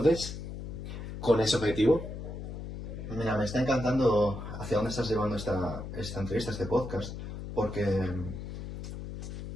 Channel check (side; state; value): left; noise; hum, 8 dB below the sound